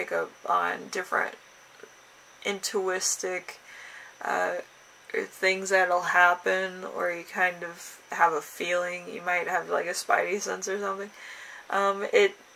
up on different intuitive things that'll happen, or you kind of have a feeling, you might have like a spidey sense or something.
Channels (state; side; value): identical; both; correlation 1.00